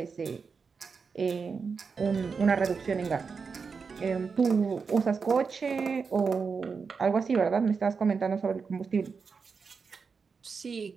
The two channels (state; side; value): quieter; left; 5.3 dB